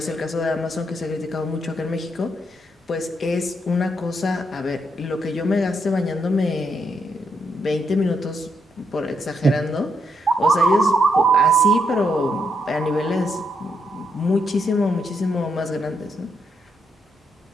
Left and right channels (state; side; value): normal; both; correlation 0.78